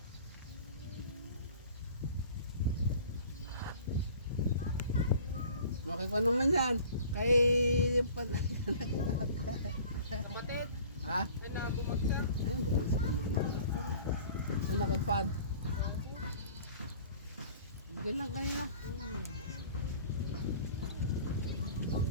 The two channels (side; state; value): both; inverted; correlation -0.47